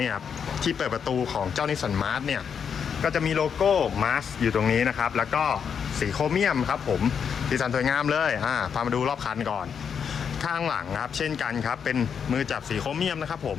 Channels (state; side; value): quieter; right; 7.1 dB